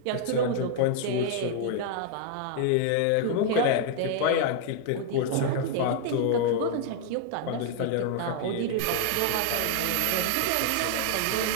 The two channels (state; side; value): different; both; correlation -0.01